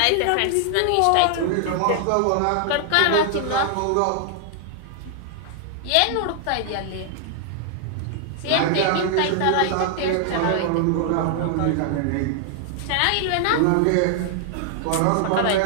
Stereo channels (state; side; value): different; both; correlation 0.00